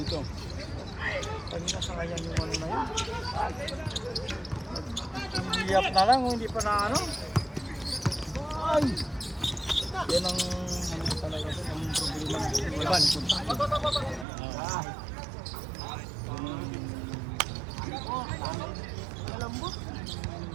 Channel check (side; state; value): left; drops out; at 14.2 s